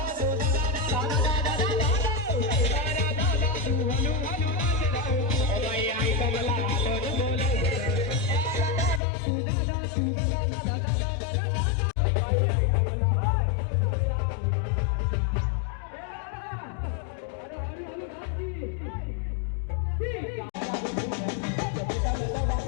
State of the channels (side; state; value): right; drops out; at 9.0 s